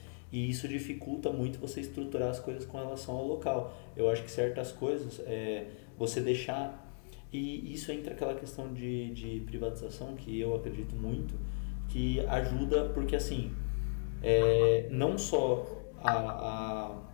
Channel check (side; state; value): right; silent; digital silence